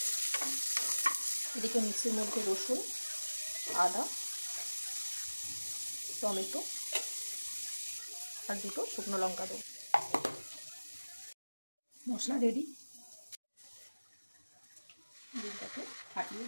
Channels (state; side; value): inverted; both; correlation -1.00